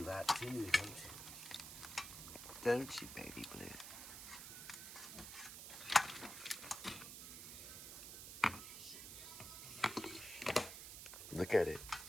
that too, don't you? Don't you, baby blue? Look at it.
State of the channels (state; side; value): noise; right; hiss, 9 dB below the sound